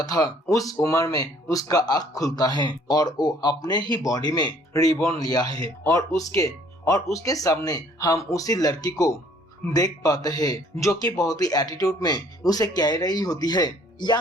था उस उम्र में उसका आँख खुलता है और वो अपने ही बॉडी में रिबॉर्न लिया है और उसके सामने हम उसी लड़की को देख पाते हैं जो कि बहुत ही एटीट्यूड में उसे कह रही होती है,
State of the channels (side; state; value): both; normal; correlation 0.59